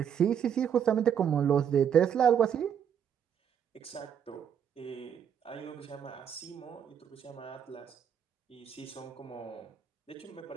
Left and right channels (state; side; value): quieter; left; 8.4 dB